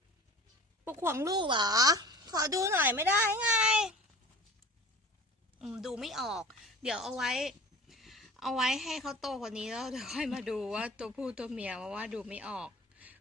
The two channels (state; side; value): normal; both; correlation 0.39